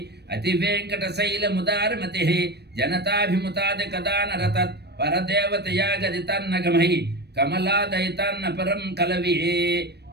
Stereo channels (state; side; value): late; left; 0.48 ms